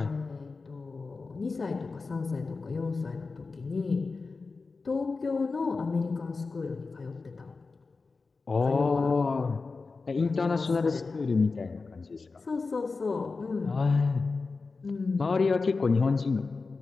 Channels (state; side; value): quieter; right; 4.2 dB